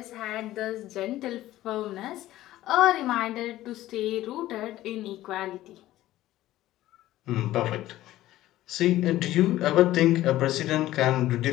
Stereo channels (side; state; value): right; quieter; 15.1 dB